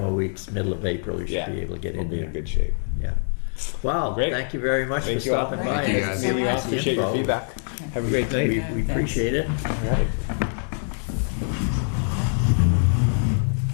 weeks, middle of April, you should Yeah, be able to get we'll in be there. in good shape. Yeah. Well, Great. thank you very much Thank for you all. stopping by. Thank you, and guys. giving Meeting you all. us the Appreciate your info. feedback. Have a great We night. appreciate it. All right.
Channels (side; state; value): right; silent; digital silence